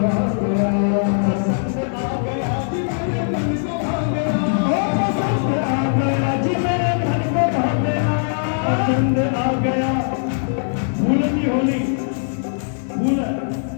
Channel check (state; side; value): silent; right; digital silence